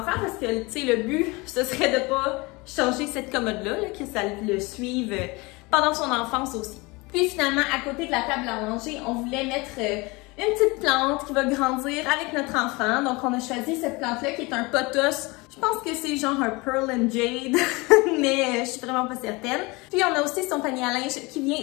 parce que, tu sais, le but, ce serait de pas changer cette commode-là, que ça le suive pendant son enfance aussi. Puis finalement, à côté de la table à manger, on voulait mettre une petite plante qui va grandir avec notre enfant. Donc on a choisi cette plante-là qui est un pothos. Je pense que c'est genre un Pearl and Jade, mais je suis vraiment pas certaine. Puis on a aussi son panier à linge qui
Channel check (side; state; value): right; quieter; 25.0 dB